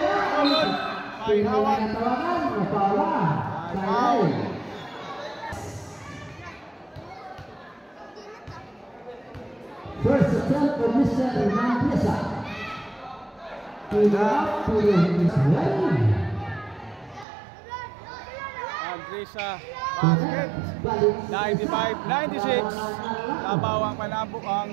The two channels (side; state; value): left; drops out; at 17.2 s